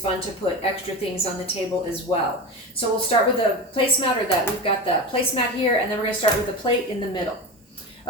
to put extra things on the table as well. So we'll start with a placemat, or that we've got the placemat here, and then we're going to start with the plate in the middle.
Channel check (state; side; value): normal; both; correlation 0.25